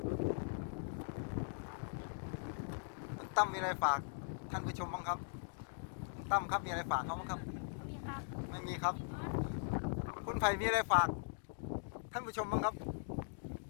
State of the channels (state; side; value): silent; right; digital silence